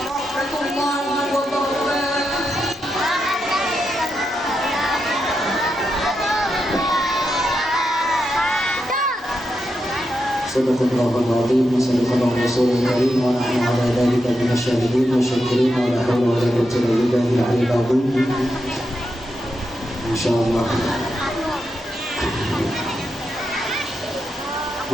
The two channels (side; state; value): both; normal; correlation 0.85